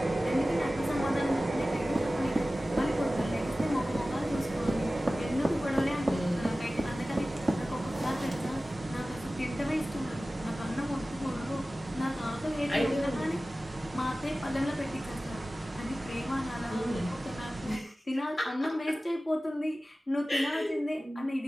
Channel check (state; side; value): normal; both; correlation 0.96